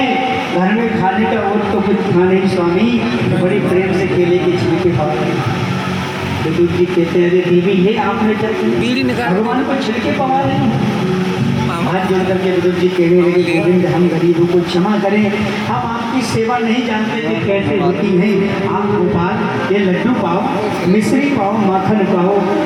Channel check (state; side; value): identical; both; correlation 1.00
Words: घर में खाने का और तो कुछ खा नहीं स्वामी, तो बड़ी प्रेम से केले के छिलके खाते। विदुर जी कहते हैं अरे देवी ये आपने भगवान को छिलके पवा रहे हैं। हाथ जोड़ करके विदुर जी कहने लगे गोविंद हम गरीबों को क्षमा करें, हम आपकी सेवा नहीं जानते थे कैसे होती है। आप गोपाल ये लड्डू पाओ, मिश्री पाओ, माखन पाओ।